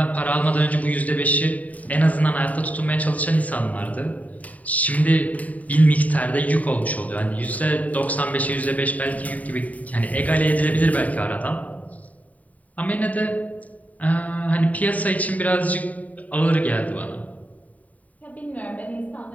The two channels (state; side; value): late; right; 0.071 ms